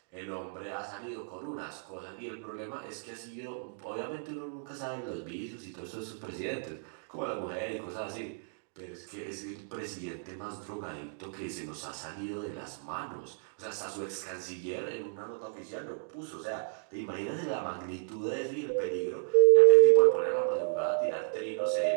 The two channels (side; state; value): left; silent; digital silence